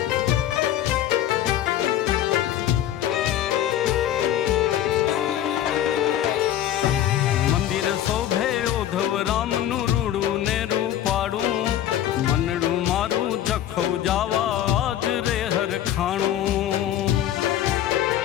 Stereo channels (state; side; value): quieter; right; 11.8 dB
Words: શોભે ઉદ્ધવ રામનું રૂડું ને રૂપાડું, મનડું મારું જખો જાવા આજ રે હરખાણું.